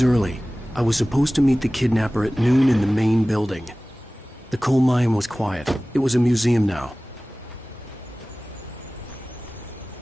early. I was supposed to meet the kidnapper at noon in the main building. The coal mine was quiet. It was a museum now.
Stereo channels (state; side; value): normal; both; correlation 0.98